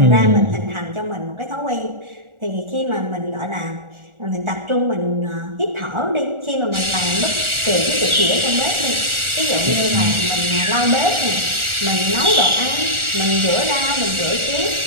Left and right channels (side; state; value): left; late; 1.4 ms